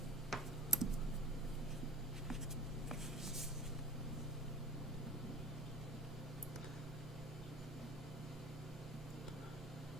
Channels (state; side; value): normal; both; correlation 0.48